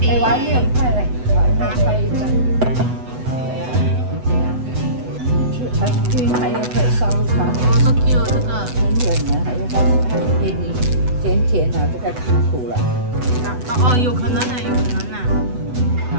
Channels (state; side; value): late; left; 8.0 ms